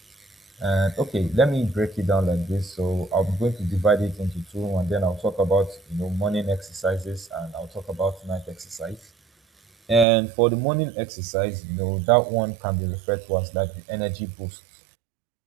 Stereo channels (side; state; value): left; drops out; at 10.1 s